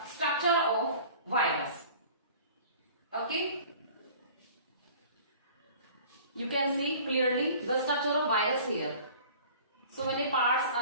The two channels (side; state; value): both; inverted; correlation -0.46